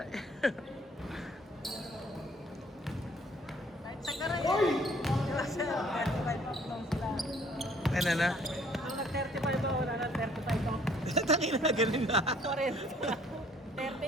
Oy! Kasi 35 up lang sila. Ano na? Nung nag-35 ba, wala na 35 up. Tangina na, ganun na.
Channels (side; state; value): both; normal; correlation 0.60